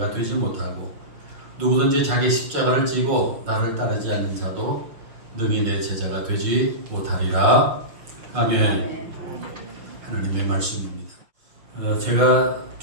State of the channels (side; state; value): left; late; 6.1 ms